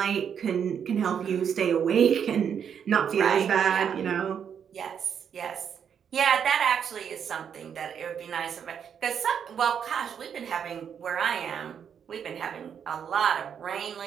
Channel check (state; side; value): quieter; left; 7.8 dB